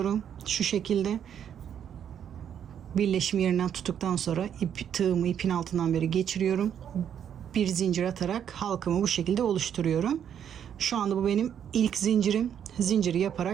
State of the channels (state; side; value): quieter; left; 9.0 dB